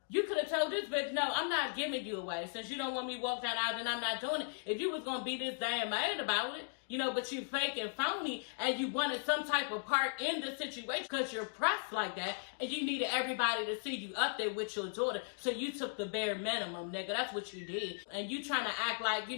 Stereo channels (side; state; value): right; silent; digital silence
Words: You could have told this bitch, no, I'm not giving you away. Since you don't want me to walk down the aisle, then I'm not doing it. If you was going to be this damn mad about it, you know, but you fake and phony and you wanted some type of part in the situation because you're pressed like that and you needed everybody to see you up there with your daughter. So you took the bare minimum, nigga. That's what you did. And you trying to act like, you